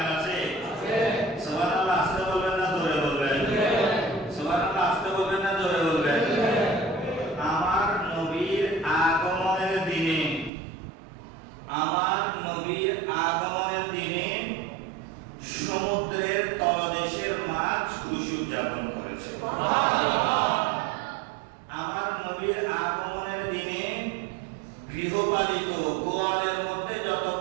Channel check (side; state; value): left; drops out; at 10.5 s